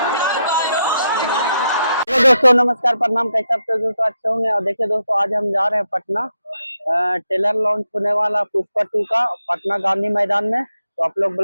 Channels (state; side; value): inverted; both; correlation -0.82